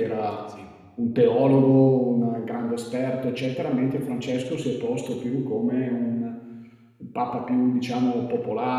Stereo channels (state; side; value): identical; both; correlation 1.00